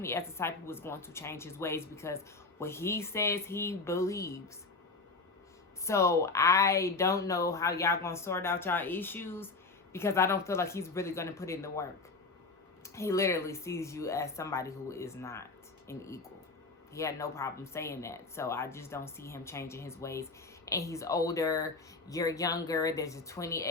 as the type who is going to change his ways because what he says he believes. So I don't know how y'all going to sort out y'all issues because I don't feel like he's really going to put in the work. He literally sees you as somebody who is not an equal. He had no problem saying that. So I just don't see him changing his ways. And he's older. You're younger. There's a 20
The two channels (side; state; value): right; quieter; 3.8 dB